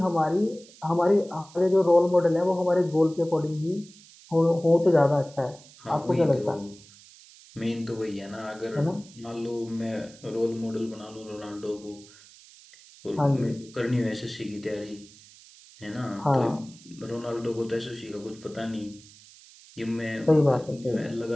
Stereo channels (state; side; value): noise; right; hiss, 23 dB below the sound